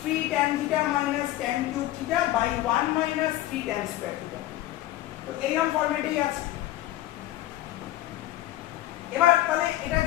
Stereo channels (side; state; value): right; quieter; 15.3 dB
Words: 3 tan theta minus tan cube theta by 1 minus 3 tan square theta। তো এইরকম ফরম্যাটেই আছে। এবার তাহলে এটার